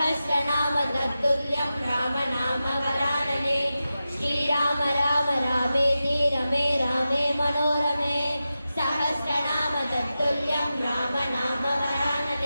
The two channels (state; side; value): inverted; both; correlation -0.92